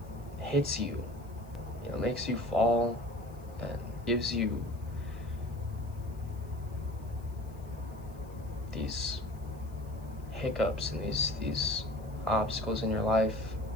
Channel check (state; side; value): noise; left; hiss, 27 dB below the sound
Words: hits you, makes you fall and gives you these hiccups and these obstacles in your life.